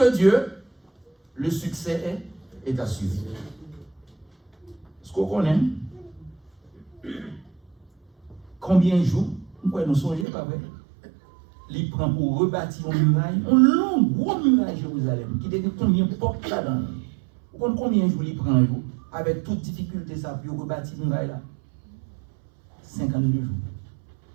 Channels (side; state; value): left; drops out; at 10.2 s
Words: Dieu, le succès est assuré. Ce qu'on connaît, combien de jours, nous songeons, pas vrai? Il prend pour rebâtir une muraille, une longue, grosse muraille Jérusalem, qui était combien de portes là-dedans. Vous comprenez combien de jours il prend, avec toute difficulté, ça, pour rebâtir une muraille là? 52 jours.